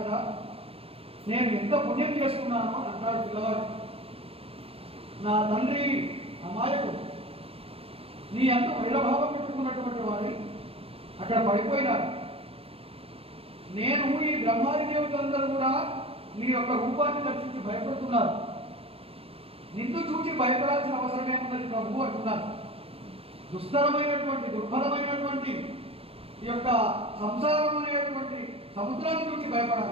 నేను ఎంత పుణ్యం చేసుకున్నానో అంటాడు పిల్లవాడు. నా తండ్రి అమాయకు, నీ అంత వైరభావం పెట్టుకున్నటువంటి వాడి అక్కడ పడిపోయినాడు. నేను ఈ బ్రహ్మాది దేవతలందరూ కూడా నీ యొక్క రూపాన్ని దర్శించి భయపడుతున్నారు. నిన్ను చూసి భయపడాల్సిన అవసరమే ఉన్నది ప్రభు అంటున్నారు. దుస్తరమైనటువంటి దుర్భరమైనటువంటి ఈ యొక్క సంసారం అనేటువంటి సముద్రాన్ని చూసి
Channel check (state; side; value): late; left; 0.28 ms